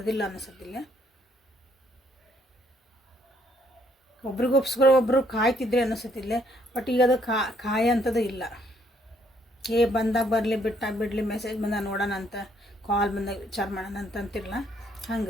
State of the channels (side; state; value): both; normal; correlation 0.68